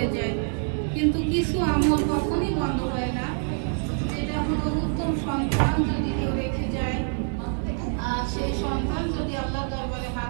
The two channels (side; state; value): left; silent; 56 dB below the other